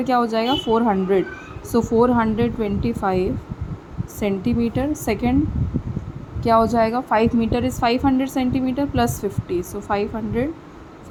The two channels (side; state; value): both; identical; correlation 1.00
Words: क्या हो जाएगा 400. सो 425 सेंटीमीटर. सेकेंड क्या हो जाएगा 5 metre is 500 centimetre plus 50, so